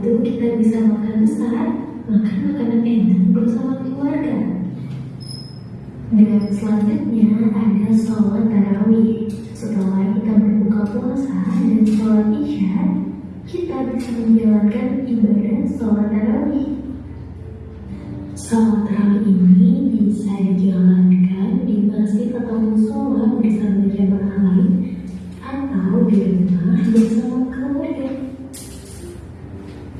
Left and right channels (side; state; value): both; identical; correlation 1.00